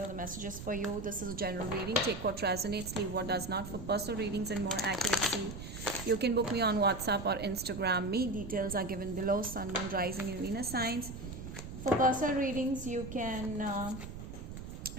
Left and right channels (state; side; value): noise; right; rumble, 10 dB below the sound